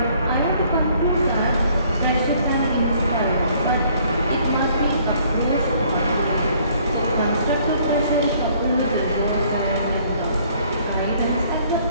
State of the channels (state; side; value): inverted; both; correlation -0.61